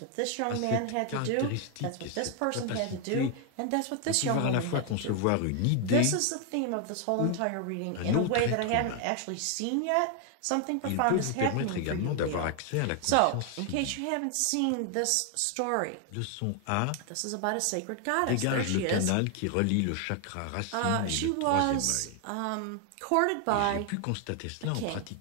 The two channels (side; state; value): both; different; correlation 0.00